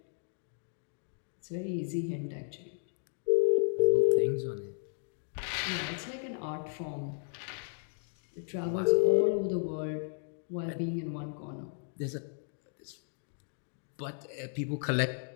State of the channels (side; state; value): right; silent; digital silence